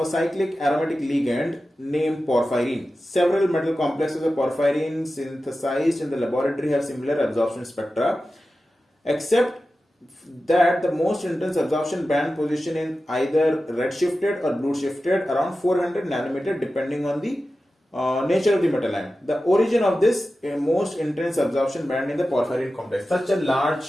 cyclic aromatic ligand named porphyrin. Several metal complexes of porphyrin synthesized in the laboratory have similar absorption spectra, except that the most intense absorption band position is either red shifted or blue shifted around 400 nanometer depending on the nature of the metal ion. The origin of this most intense absorption band in the porphyrin complex. Such a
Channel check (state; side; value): normal; both; correlation 0.93